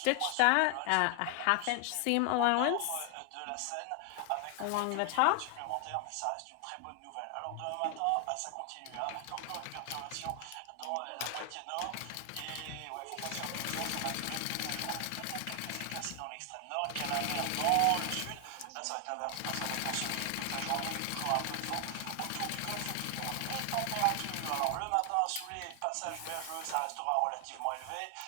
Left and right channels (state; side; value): different; both; correlation 0.00